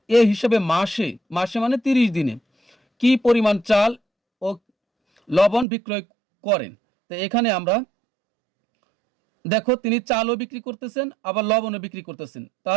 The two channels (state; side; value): drops out; left; at 5.7 s